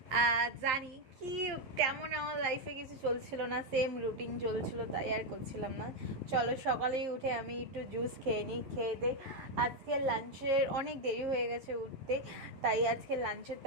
জানি কি তেমন আমার লাইফে কিছু চলছিল না, সেম রুটিন চলছিল, তাই আর করছিলাম না। চলো সকালেই উঠে আমি একটু জুস খেয়ে নিই, খেয়ে দে। আজকে লাঞ্চের অনেক দেরি হয়ে গেছে উঠতে, তাই আজকে লাঞ্চের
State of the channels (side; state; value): left; late; 11 ms